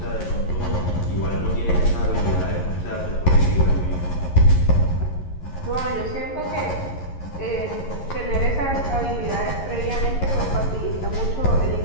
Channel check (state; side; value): late; right; 11 ms